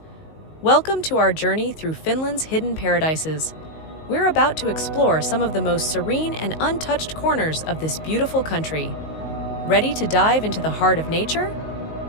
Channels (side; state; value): right; late; 19 ms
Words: Welcome to our journey through Finland's hidden paradises. We're about to explore some of the most serene and untouched corners of this beautiful country. Ready to dive into the heart of nature?